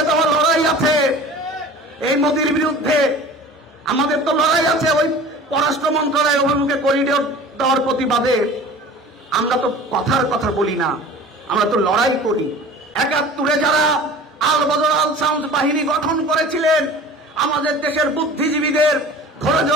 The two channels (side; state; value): both; normal; correlation 0.41